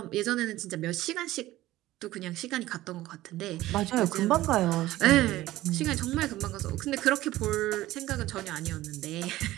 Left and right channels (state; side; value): quieter; left; 16.1 dB